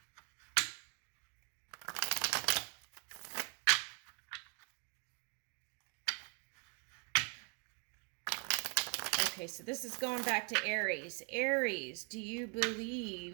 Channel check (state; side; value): quieter; left; 37.8 dB